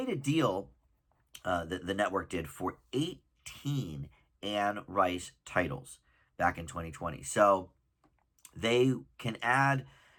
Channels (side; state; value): both; identical; correlation 1.00